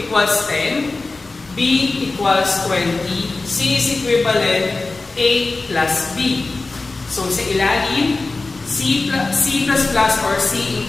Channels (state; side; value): quieter; right; 3.5 dB